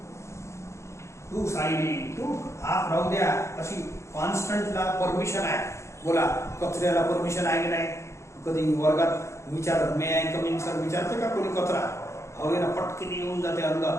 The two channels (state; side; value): late; right; 0.14 ms